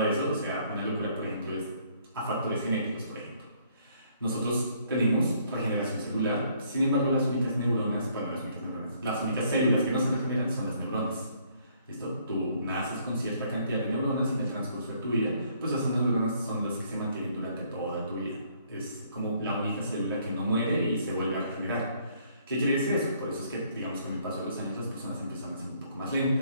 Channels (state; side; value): inverted; both; correlation -0.65